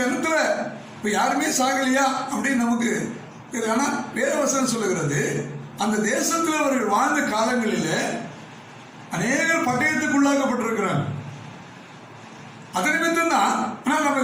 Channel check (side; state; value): both; identical; correlation 1.00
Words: ஜனத்துல இப்போ யாருமே சாகலையா அப்படின்னு நமக்கு தெரியும். ஆனால் வேதவசனம் சொல்லுகிறது, அந்த தேசத்தில் அவர்கள் வாழ்ந்த காலங்களில் அநேகர் பட்டயத்துக்குள்ளாக்கப்பட்டிருக்கிறாங்க. அது நிமித்தம் தான். ஆனால் நம்ம